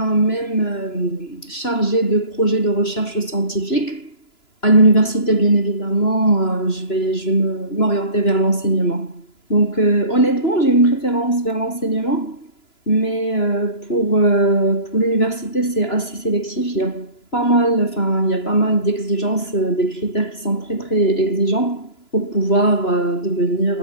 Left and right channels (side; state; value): right; late; 2.9 ms